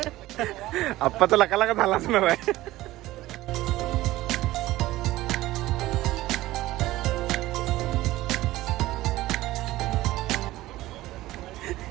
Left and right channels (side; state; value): left; quieter; 16.9 dB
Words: आप्पा तर लका झालाच नव्हे.